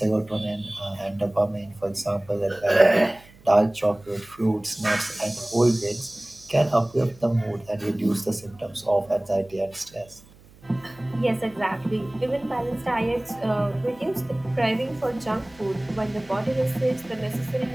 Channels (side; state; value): right; noise; hum, 25 dB below the sound